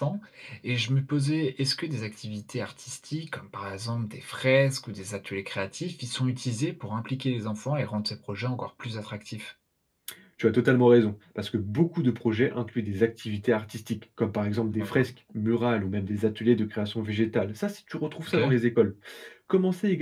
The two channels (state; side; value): identical; both; correlation 1.00